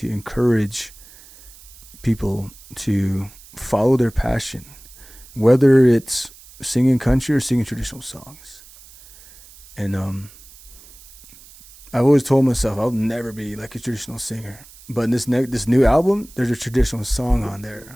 to encourage people to follow their passion, whether it's singing country or singing traditional songs. And I've always told myself I'll never be like a traditional singer, but in this new album, there's a traditional song on there. Cool.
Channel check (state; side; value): noise; right; hiss, 22 dB below the sound